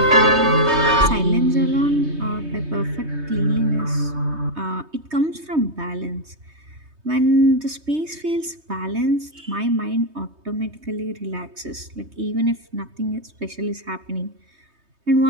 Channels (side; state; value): left; late; 3.2 ms